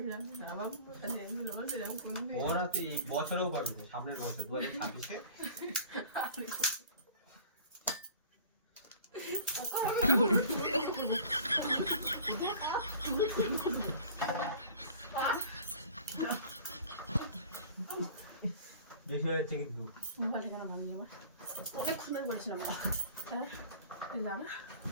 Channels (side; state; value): both; inverted; correlation -0.45